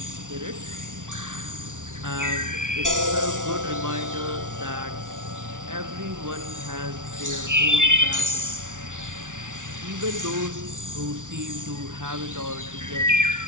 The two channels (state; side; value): late; left; 0.87 ms